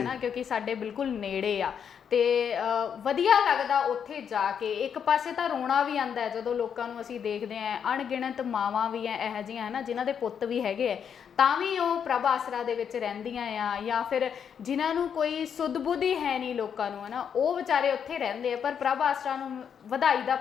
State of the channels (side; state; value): right; quieter; 7.7 dB